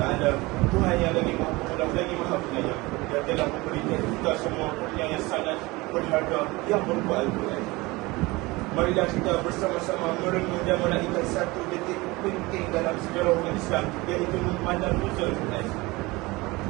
Taala, Tuhan yang lagi Maha Pengalah, lagi Maha Penyayang, yang telah memberikan kita semua kurnia yang sangat berharga yang berupa Al-Quran. Marilah kita bersama-sama merenung dan menaikkan satu detik penting dalam sejarah umat Islam, iaitu malam Nuzul Quran.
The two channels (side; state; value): left; quieter; 22.4 dB